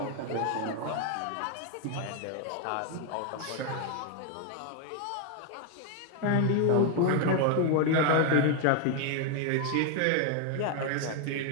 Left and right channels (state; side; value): different; both; correlation 0.01